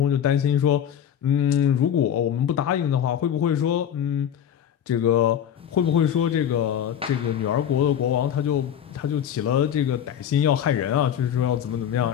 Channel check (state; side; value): quieter; right; 9.4 dB